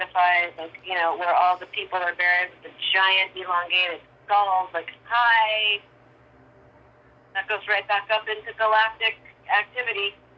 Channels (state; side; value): identical; both; correlation 1.00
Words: like, you know, where all the people are buried with the giant elongated skulls, like, hi. That goes right back up into galactic activity